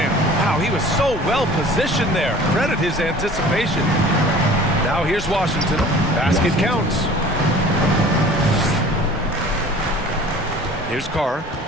Wow, he was so well positioned there. Credit his anticipation. Now here's Washington. Basket counts. Here's Carr.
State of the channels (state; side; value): normal; both; correlation 0.45